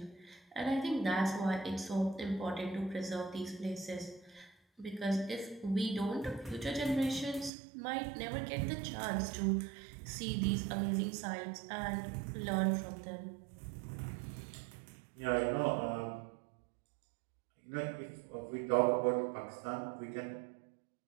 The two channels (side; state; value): left; drops out; at 7.5 s